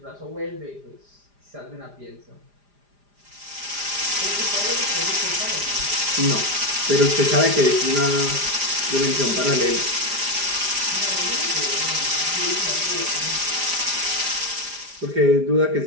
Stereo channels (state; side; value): late; left; 4.9 ms